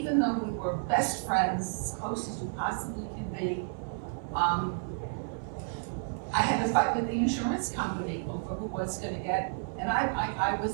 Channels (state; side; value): silent; left; 57 dB below the other